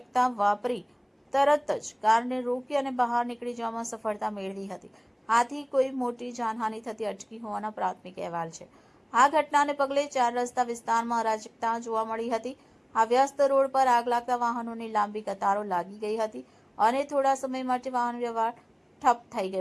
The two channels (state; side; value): identical; both; correlation 1.00